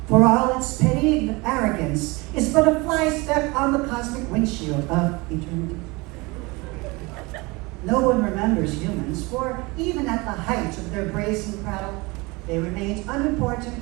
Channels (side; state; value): left; quieter; 24.9 dB